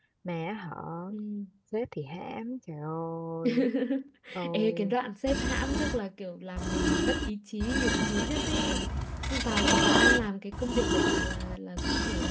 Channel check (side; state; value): both; identical; correlation 1.00